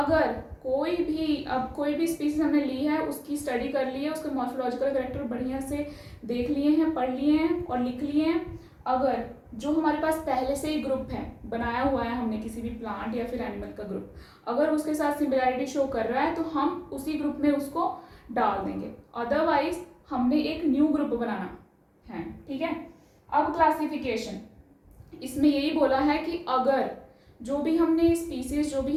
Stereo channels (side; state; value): both; identical; correlation 1.00